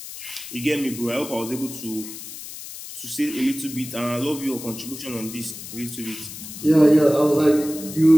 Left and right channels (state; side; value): noise; left; hiss, 12 dB below the sound